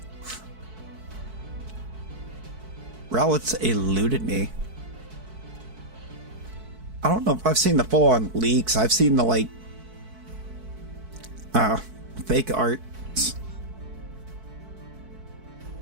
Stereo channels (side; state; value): left; late; 4.6 ms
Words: Rowlet's eluded me. I don't know if I've seen the full-on leaks. I've seen the, like, fake art.